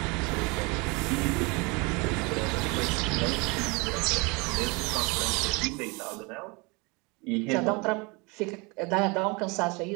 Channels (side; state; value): left; quieter; 28.2 dB